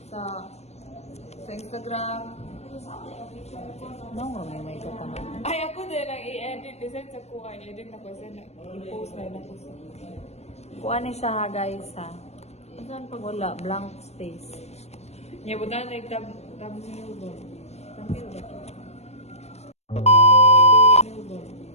Sa Instagram. No, may kataman. Ay, ako din ang i-edit. Design sa kuha. I-edit ako sa i-post na ako sa. Kuan ni siya ha, guys ha. Saan pag wala? Blank space. Niya, buta na thumbnail ba? Thumbnail ba ito?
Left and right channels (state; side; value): late; right; 0.31 ms